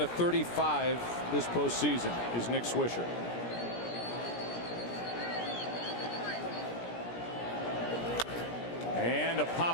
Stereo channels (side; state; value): right; late; 17 ms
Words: of 35 this postseason is Nick Swisher. And a